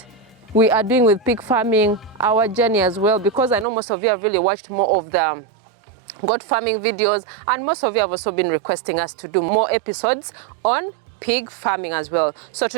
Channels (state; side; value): drops out; left; at 3.7 s